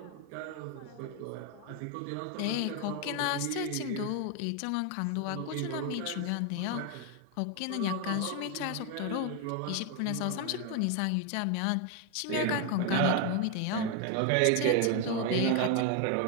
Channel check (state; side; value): different; both; correlation 0.01